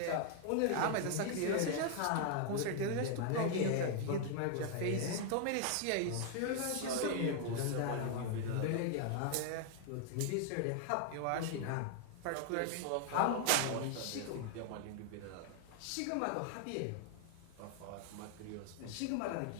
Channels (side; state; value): both; different; correlation 0.00